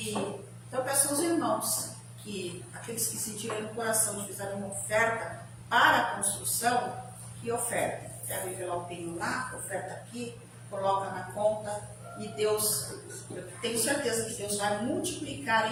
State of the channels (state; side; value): identical; both; correlation 1.00